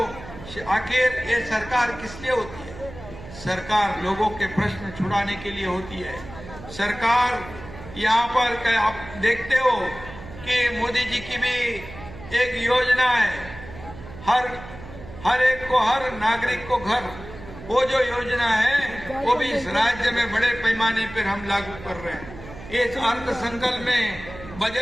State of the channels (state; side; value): noise; right; hum, 15 dB below the sound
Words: आखिर ये सरकार किस लिए होती है? सरकार लोगों के प्रश्न छुड़ाने के लिए होती है। सरकार यहाँ पर आप देखते हो कि मोदी जी की भी एक योजना है, हर एक को, हर नागरिक को घर, वो जो योजना है वो भी इस राज्य में बड़े पैमाने पर हम लागू कर रहे हैं। इस अर्थ संकल्प में,